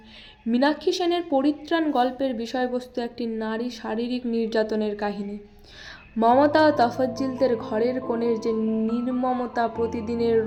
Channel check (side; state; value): both; identical; correlation 1.00